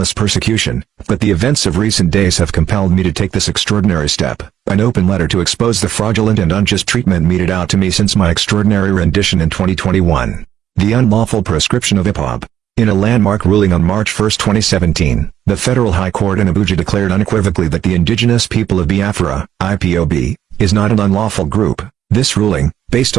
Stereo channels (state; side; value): quieter; left; 10.6 dB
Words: persecution, but the events of recent days have compelled me to take this extraordinary step, an open letter to expose the fraudulent and unjust treatment meted out to me since my extraordinary rendition in 2021. The unlawful proscription of IPOB. In a landmark ruling on March 1, 2017, the Federal High Court in Abuja declared unequivocally that the indigenous people of Biafra, IPOB, is not an unlawful group. This ruling, based